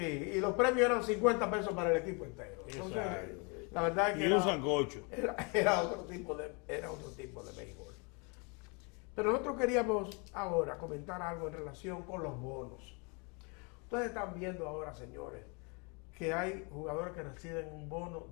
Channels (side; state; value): right; quieter; 32.9 dB